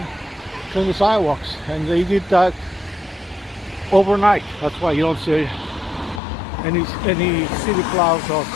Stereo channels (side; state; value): right; drops out; at 6.2 s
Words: clean the sidewalks, and they did that overnight. That's why you don't see any city plows or